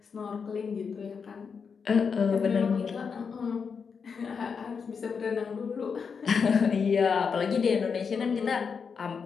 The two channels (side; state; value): right; quieter; 5.9 dB